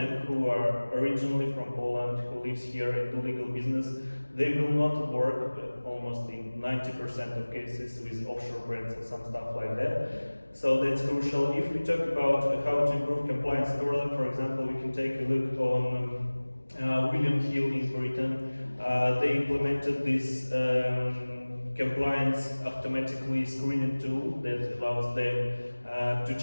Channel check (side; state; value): both; inverted; correlation -1.00